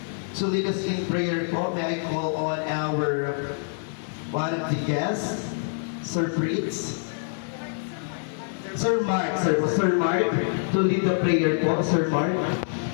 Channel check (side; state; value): right; silent; 61 dB below the other